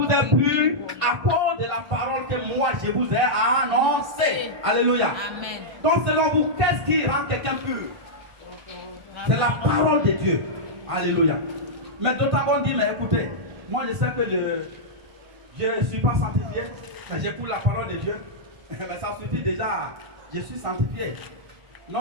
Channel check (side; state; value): left; late; 1.5 ms